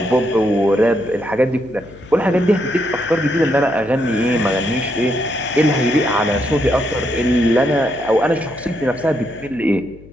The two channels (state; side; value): noise; left; hum, 21 dB below the sound